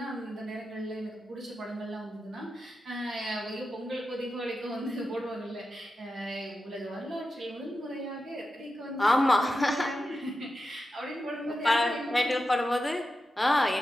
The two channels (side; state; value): both; normal; correlation 0.90